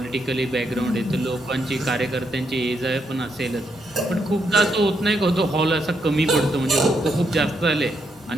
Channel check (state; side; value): normal; both; correlation 0.78